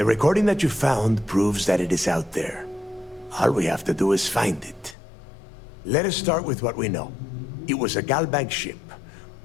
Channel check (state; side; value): drops out; right; at 5.0 s